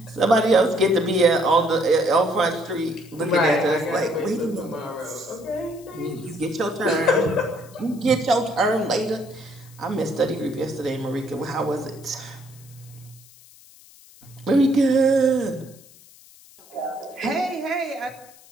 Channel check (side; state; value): left; noise; hiss, 24 dB below the sound